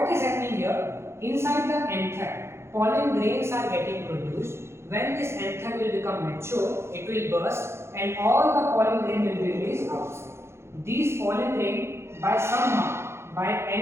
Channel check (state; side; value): late; left; 0.13 ms